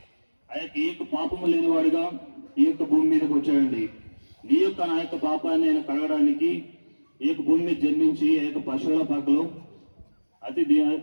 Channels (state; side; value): inverted; both; correlation -1.00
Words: ఆ యొక్క ఏ యొక్క పాపము లేనివాడిగా ఈ యొక్క భూమి మీదకి వచ్చాడండి. నీ యొక్క నా యొక్క పాపాన్ని ఆయన కడగడానికి ఈ యొక్క భూమి మీద జన్మించి ఆ యొక్క పశువుల పాకలో